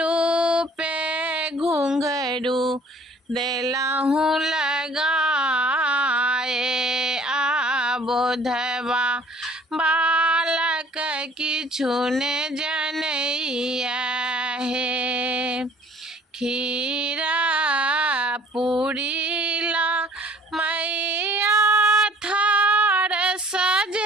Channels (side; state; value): both; normal; correlation 0.54